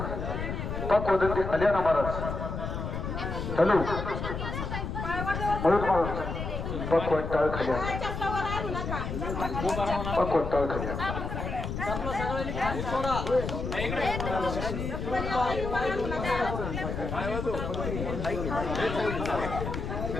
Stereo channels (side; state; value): left; noise; rumble, 4 dB below the sound